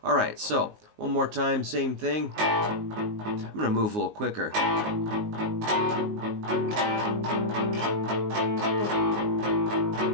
All right, so one more time, same thing. I'm going to move a little quicker.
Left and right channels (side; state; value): left; late; 19 ms